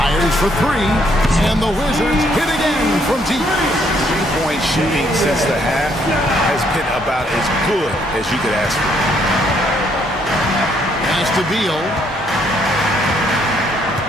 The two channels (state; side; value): normal; both; correlation 0.70